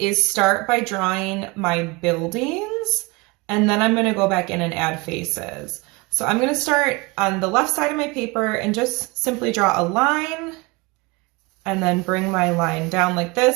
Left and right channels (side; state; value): left; quieter; 25.9 dB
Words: start by drawing my buildings, and then I'm going to go back in and add faces. So I'm going to start on the left side of my paper and just simply draw a line and then bring my line down like